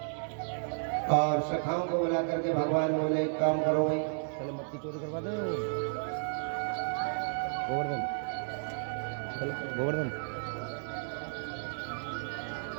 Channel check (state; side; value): silent; left; digital silence